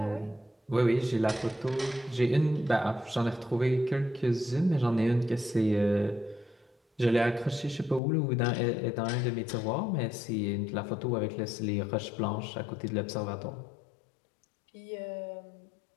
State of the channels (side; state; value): right; drops out; at 8.0 s